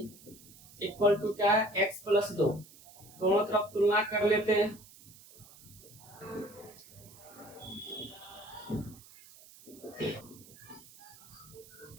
equal to क्या है? x plus 2। दोनों तरफ तुलना कर लेते हैं।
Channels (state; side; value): noise; right; hiss, 21 dB below the sound